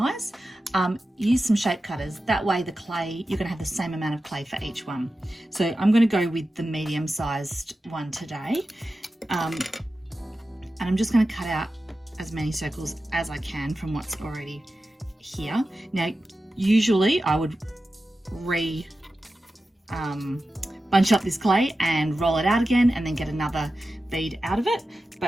use some shape cutters. That way the clay, you're going to have the same amount of clay for each one. So I'm going to go with the medium sized one today. And I'm just going to cut out as many circles as I can from what's already here. Now, usually I would bunch up this clay and roll it out again and then get another bead out of it,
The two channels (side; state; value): both; normal; correlation 0.93